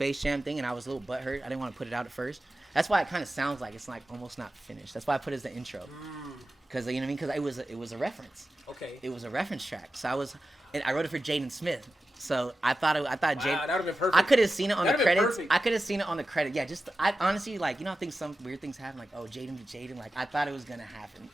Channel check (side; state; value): both; normal; correlation 0.93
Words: Jam thing and I was a little butthurt. I didn't want to put it out at first. That's why it kind of sounds like it's like almost not finished. That's why I put it as the intro. Cuz you know what I mean? Cuz it was a reference. Okay. It was a reference track. So I wrote it for Jaden Smith. So I thought Jaden. That would have been perfect. I could have seen it on the credits. Perfect. I could have seen it on the credit. Yeah, I honestly like I think some weird things happen like Jaden to Jaden. Like I thought it was gonna happen.